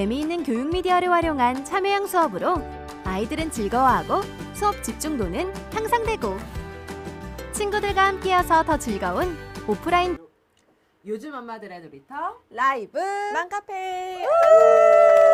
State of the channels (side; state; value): both; identical; correlation 1.00